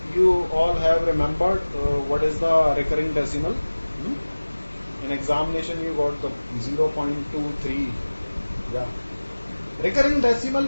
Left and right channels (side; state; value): both; inverted; correlation -1.00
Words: you all have remembered what is the recurring decimal. In examination you got the 0.23. Yeah. Recurring decimal